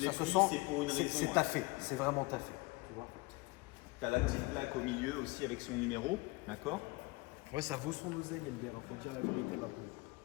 l'ai ça se pris, sent, c'est pour une raison, C'est hein. taffé. C'est vraiment taffé. Tu vois. T'as la petite plaque au milieu aussi avec son numéro, d'accord? Ouais, ça vaut son oseille, Elder. Il faut dire la vérité maintenant.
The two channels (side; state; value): right; quieter; 24.1 dB